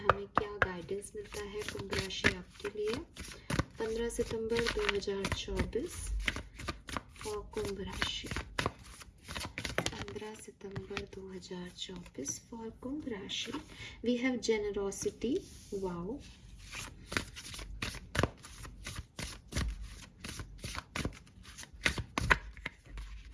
क्या गाइडेंस मिलता है कुंभ राशि आपके लिए 15 सितंबर 2024 और कुंभ राशि 15 सितंबर 2024 फॉर कुंभ राशि। We have generosity, wow,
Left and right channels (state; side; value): identical; both; correlation 1.00